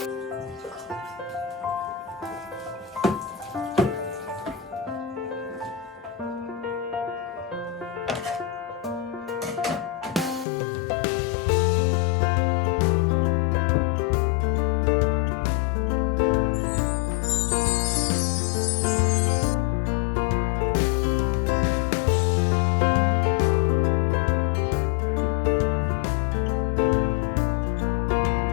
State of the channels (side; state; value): right; drops out; at 10.5 s